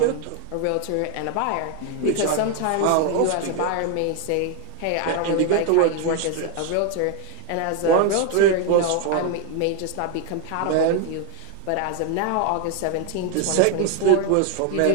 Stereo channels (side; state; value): both; different; correlation 0.01